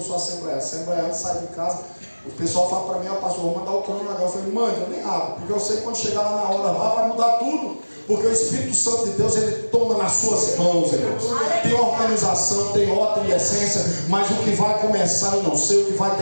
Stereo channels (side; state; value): both; inverted; correlation -1.00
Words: sou assembleano. Assembleano, sai de casa, o pessoal fala para mim: ó, pastor, vou mandar o cronograma. Eu falei: mande, eu nem abro, porque eu sei que quando chegar lá na hora lá vai mudar tudo. Porque o Espírito Santo de Deus, ele toma nas suas mãos, irmãos. Tem organização, tem ordem e essência, mas o que vai começar eu não sei, o que vai